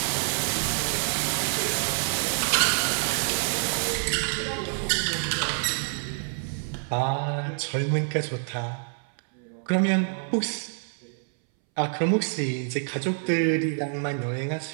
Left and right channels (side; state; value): left; silent; 60 dB below the other